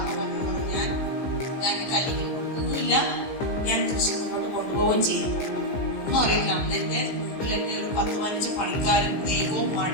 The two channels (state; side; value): late; right; 15 ms